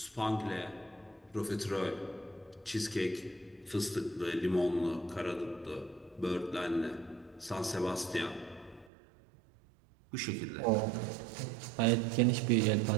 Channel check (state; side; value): drops out; left; at 8.9 s